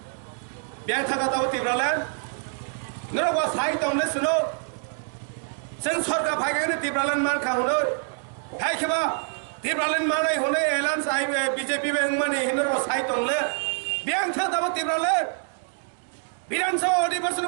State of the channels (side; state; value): left; silent; 56 dB below the other